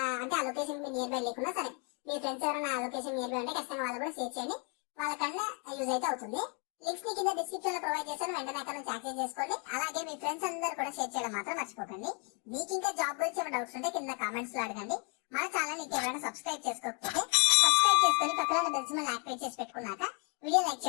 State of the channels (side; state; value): right; quieter; 37.6 dB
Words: అంటే ఆ లొకేషన్ మీ నియర్ బై లేకున్నా సరే మీ ఫ్రెండ్స్ ఎవరైనా ఆ లొకేషన్ నియర్ బై ఉంటే ఖచ్చితంగా వాళ్ళు కూడా షేర్ చేయండి, వాళ్ళకన్నా యూజ్ అయితే అవుతుంది. లింక్స్ ని కింద డిస్క్రిప్షన్ లో ప్రొవైడ్ చేస్తాను, వెంటనే అక్కడ నుంచి యాక్సెస్ చేసుకోండి. అలాగే మీ ఫ్రెండ్స్ అందరూ కూడా షేర్ చేయడం మాత్రం మర్చిపోకండి. మీకు ఇంకా జాబ్ గురించి ఏమైనా డౌట్స్ ఉంటే కింద కామెంట్స్ లో అడగండి. మన ఛానల్ ఎవరైనా సబ్స్క్రైబ్ చేసుకోకపోతే సబ్స్క్రైబ్ చేసుకొని పక్కన బెల్ సింబల్ యాక్టివేట్ చేసి పెట్టుకున్నాక వీడియో లైక్